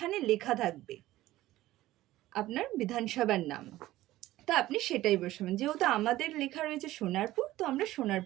লেখা থাকবে আপনার বিধানসভার নাম, তো আপনি সেটাই বসাবেন। যেহেতু আমাদের লেখা রয়েছে সোনারপুর, তো আমরা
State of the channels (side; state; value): left; quieter; 16.0 dB